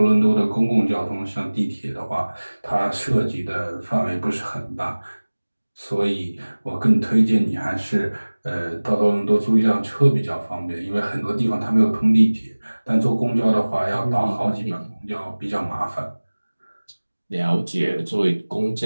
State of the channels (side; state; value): both; inverted; correlation -1.00